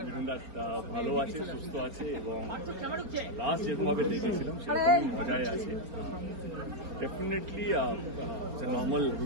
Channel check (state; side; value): late; left; 4.3 ms